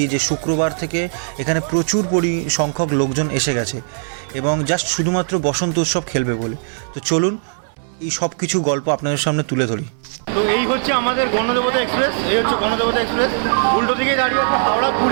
যে শুক্রবার থেকে এখানে প্রচুর সংখ্যক লোকজন এসে গেছে এবং জাস্ট শুধুমাত্র বসন্ত উৎসব খেলবে বলে। তো চলুন এই সব কিছু গল্প আপনাদের সামনে তুলে ধরি। তো এই হচ্ছে আমাদের গণদেবতা এক্সপ্রেস, এই হচ্ছে গণদেবতা এক্সপ্রেস। উল্টো দিকে দাঁড়িয়ে আছে হাওড়া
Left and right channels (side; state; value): left; silent; 66 dB below the other